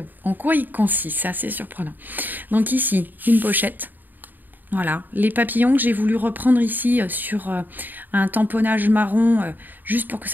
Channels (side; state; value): left; late; 0.089 ms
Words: en quoi il consiste, c'est assez surprenant. Donc ici, une pochette. Voilà, les papillons que j'ai voulu reprendre ici sur un tamponnage marron, juste pour que